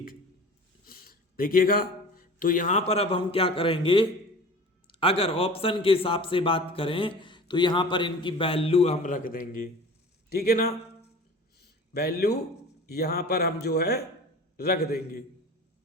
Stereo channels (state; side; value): normal; both; correlation 0.40